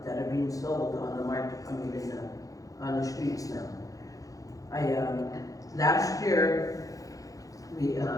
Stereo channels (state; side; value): late; right; 0.17 ms